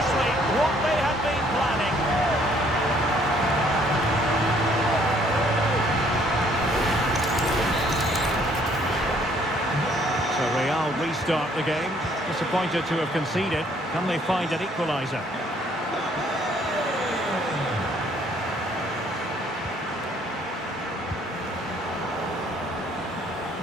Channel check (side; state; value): both; normal; correlation 0.63